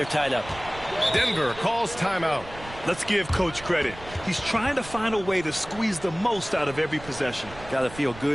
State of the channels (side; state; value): right; noise; rumble, 16 dB below the sound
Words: tied up. Denver calls timeout. Let's give Coach credit. He's trying to find a way to squeeze the most out of every possession. Got to feel